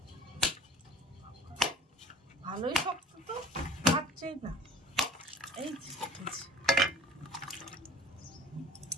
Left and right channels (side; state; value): both; normal; correlation 0.46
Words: ভালোই শক্ত তো, পাচ্ছেই না। এই